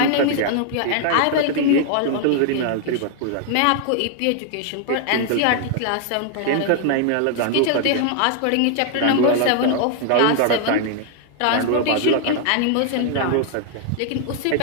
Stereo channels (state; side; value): different; both; correlation 0.00